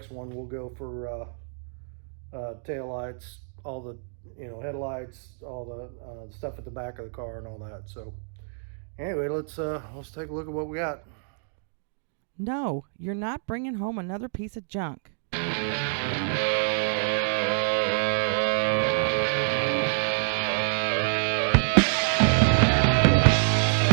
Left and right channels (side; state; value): left; silent; digital silence